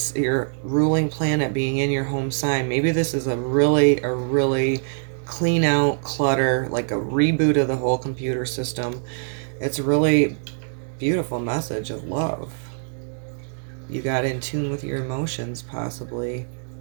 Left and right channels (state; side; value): silent; left; digital silence